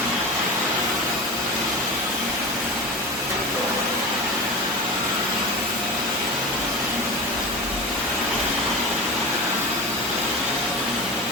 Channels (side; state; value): both; normal; correlation 0.27